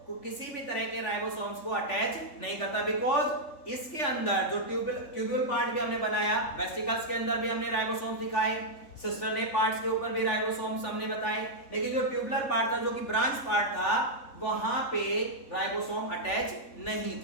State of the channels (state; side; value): late; right; 3.5 ms